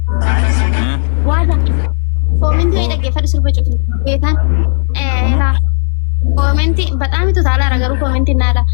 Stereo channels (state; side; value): silent; right; 69 dB below the other